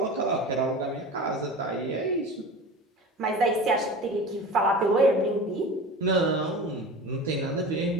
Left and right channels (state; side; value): normal; both; correlation 0.34